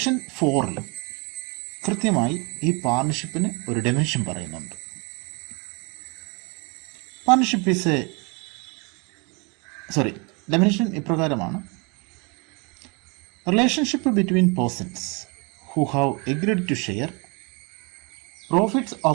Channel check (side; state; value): left; quieter; 30.5 dB